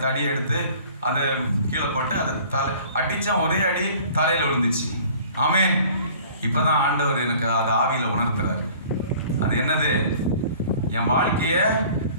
தடியை எடுத்து அதை கீழே போட்டு அதை அடிச்சான், ஒரே அடி தலையில விழுந்துச்சு. ஆமென். இப்பதான் ஆண்டவர் எனக்கு அது ஆவியில உணர்த்துறாரு. அது என்னது? என் வாழ்க்கைய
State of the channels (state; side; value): inverted; both; correlation -0.49